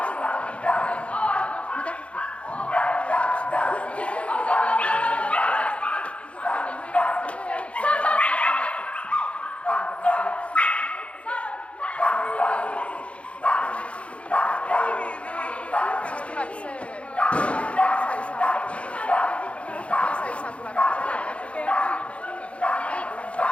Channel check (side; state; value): right; late; 0.062 ms